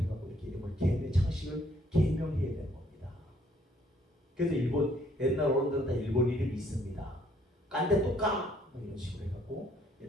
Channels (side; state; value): both; normal; correlation 0.65